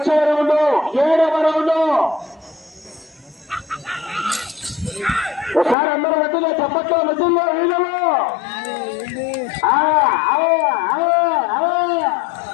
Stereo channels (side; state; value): right; drops out; at 5.8 s